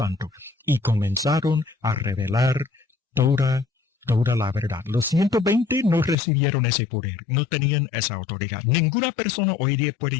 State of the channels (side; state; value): right; drops out; at 6.2 s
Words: y comenzaron a revelar toda la verdad. Los 120 no recibieron ese poder, no tenían esa autoridad. Ninguna persona hoy día puede